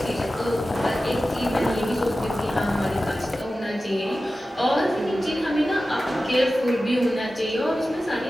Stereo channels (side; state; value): both; normal; correlation 0.94